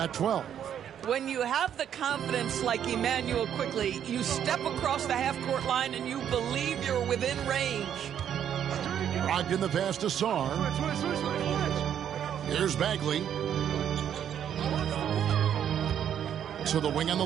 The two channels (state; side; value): quieter; left; 9.4 dB